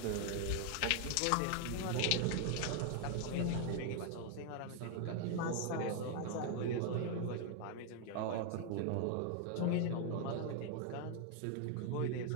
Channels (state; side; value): different; both; correlation 0.00